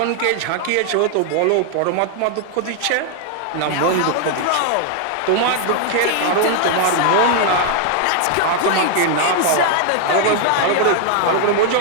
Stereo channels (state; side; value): different; both; correlation 0.00